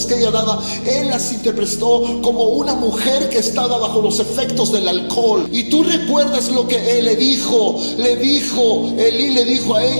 que ella daba. Él las interpretó como una mujer que estaba bajo los efectos del alcohol. Y tú recuerdas lo que él le dijo. Elí le dijo a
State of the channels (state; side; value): inverted; both; correlation -1.00